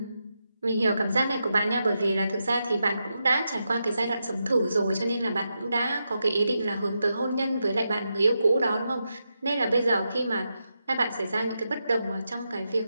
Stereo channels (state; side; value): inverted; both; correlation -0.86